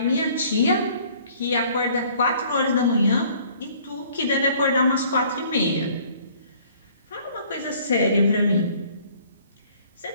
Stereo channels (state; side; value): inverted; both; correlation -0.56